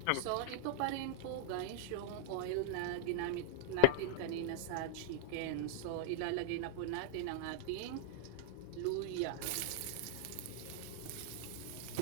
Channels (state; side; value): different; both; correlation 0.00